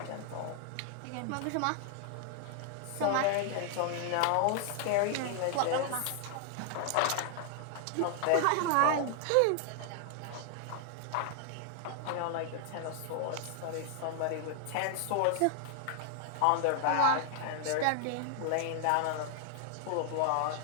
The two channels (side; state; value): both; different; correlation 0.00